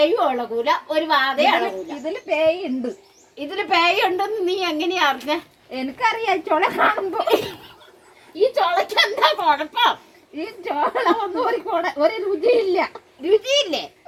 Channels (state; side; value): identical; both; correlation 1.00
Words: ഇളകൂല, ഒരു വാതയും ഇളകൂല. ഇതില് പേയുണ്ട്. ഇതില് പേയുണ്ടെന്ന് നീ എങ്ങനെയാ അറിഞ്ഞ? എനിക്കറിയാം. ചുള കാണുമ്പോ. ഈ ചുളക്ക് എന്താ കുഴപ്പം? ഈ ചോള ഒന്നും ഒരു രുചിയില്ല. രുചിയില്ലേ?